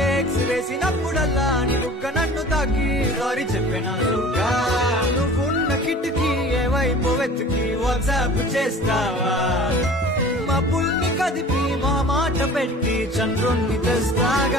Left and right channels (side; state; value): both; normal; correlation 0.43